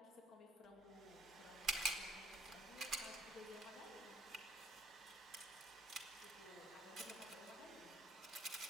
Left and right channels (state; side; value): normal; both; correlation 0.61